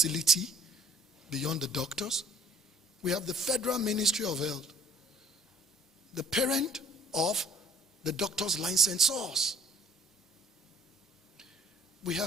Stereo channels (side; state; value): both; normal; correlation 0.55